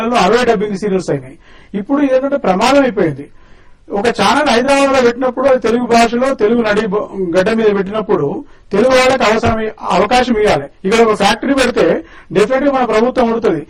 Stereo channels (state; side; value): identical; both; correlation 1.00